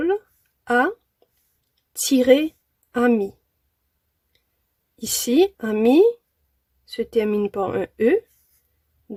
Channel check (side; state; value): both; identical; correlation 1.00